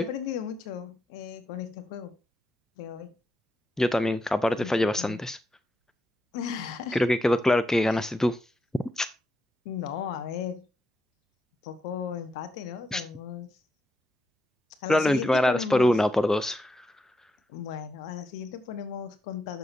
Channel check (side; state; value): both; normal; correlation 0.84